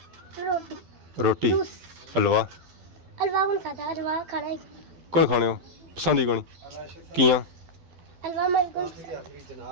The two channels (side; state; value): left; late; 12 ms